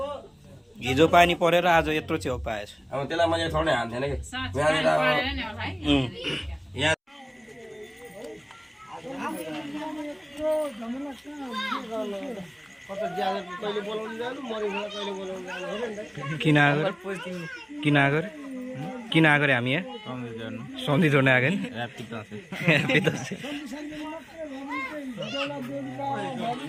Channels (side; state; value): both; identical; correlation 1.00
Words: हिजो पानी परेर आज यत्रो च्याउ पाएछ अब त्यसलाई मैले थोरै हान्थेन कि कहिले बोलाउनु जानु मरेको कहिले बोलाउनु जानु हेर नि त किन आएको हामी यहाँ सन्धि जोड्न आएको नि